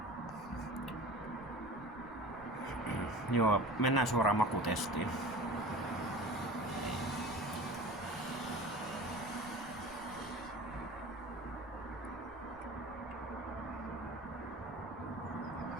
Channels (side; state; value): right; noise; rumble, 21 dB below the sound